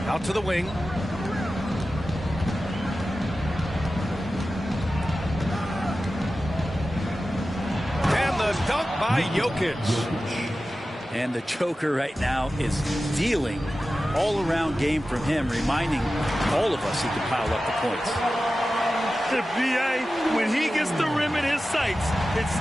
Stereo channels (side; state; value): both; normal; correlation 0.94